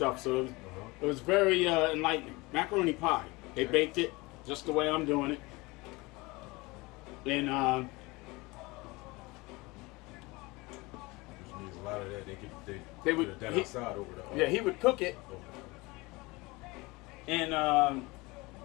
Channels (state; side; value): quieter; right; 23.6 dB